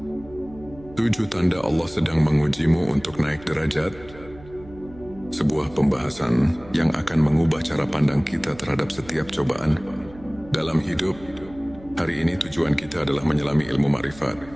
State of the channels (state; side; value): noise; right; hum, 20 dB below the sound